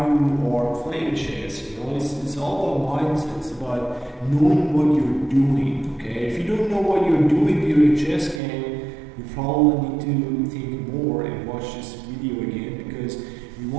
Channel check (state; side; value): drops out; left; at 8.4 s